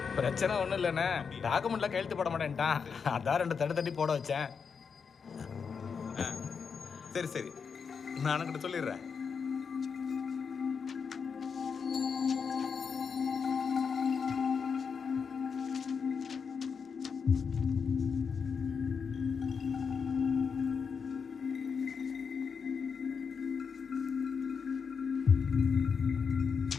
பிரச்சனை ஒன்றும் இல்லைண்ணே. டாக்குமெண்ட்லாம் கையெழுத்து போட மாட்டேன்ட்டான். அதான் 2 தட்டி போட வச்சேன். சரி சரி, நான் அண்ணன்கிட்ட சொல்லிடுறேன்.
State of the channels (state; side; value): quieter; right; 6.0 dB